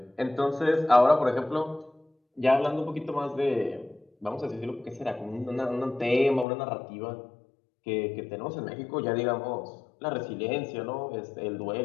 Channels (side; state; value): right; drops out; at 6.5 s